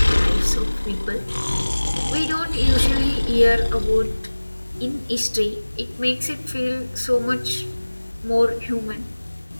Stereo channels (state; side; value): inverted; both; correlation -1.00